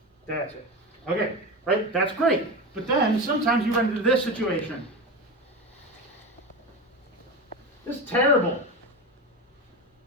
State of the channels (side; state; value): both; normal; correlation 0.23